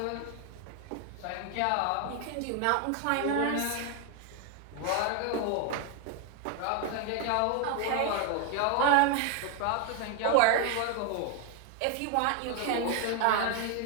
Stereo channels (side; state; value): both; different; correlation 0.01